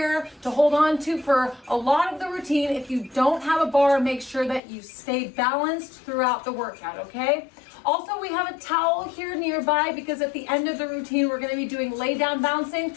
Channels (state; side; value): drops out; right; at 4.6 s